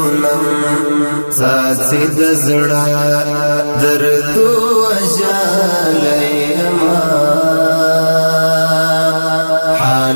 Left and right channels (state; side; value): inverted; both; correlation -1.00